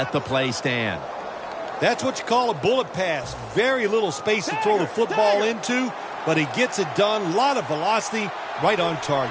the play stand. That's what you call a bullet pass. Very little space to throw the football into, but he gets it done. A lot of velocity, right on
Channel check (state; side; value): identical; both; correlation 1.00